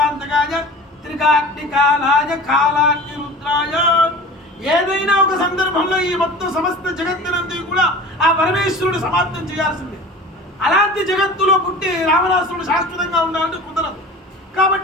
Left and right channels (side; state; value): both; normal; correlation 0.38